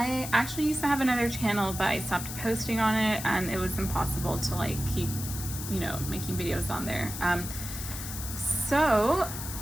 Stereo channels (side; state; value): left; noise; hiss, 8 dB below the sound